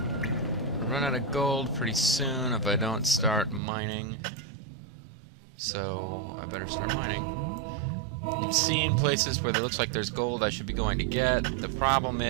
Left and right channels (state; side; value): drops out; left; at 3.6 s